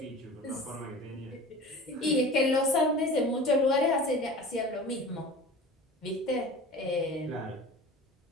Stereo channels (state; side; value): normal; both; correlation 0.38